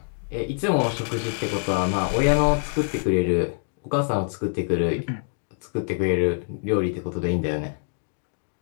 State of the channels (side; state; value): right; silent; digital silence